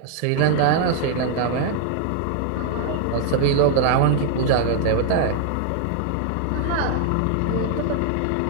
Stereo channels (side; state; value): both; different; correlation 0.00